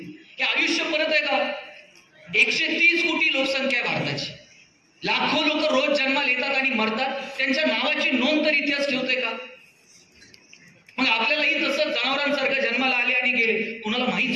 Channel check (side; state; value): both; identical; correlation 1.00